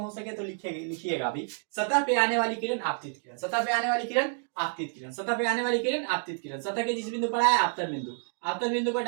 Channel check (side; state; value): left; silent; 59 dB below the other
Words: सके तो लिखिएगा अभी। सतह पे आने वाली किरण आपतित किरण, सतह पे आने वाली किरण आपतित किरण, सतह पे आने वाली किरण आपतित किरण। सतह के जिस बिंदु पर आया आपतन बिंदु, आपतन बिंदु पर